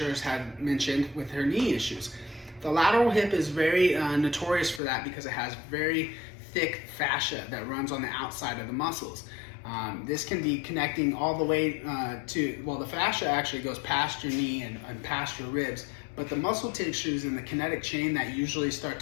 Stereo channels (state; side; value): drops out; right; at 4.8 s